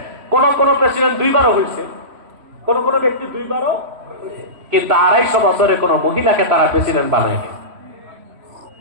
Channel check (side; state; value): left; late; 3.0 ms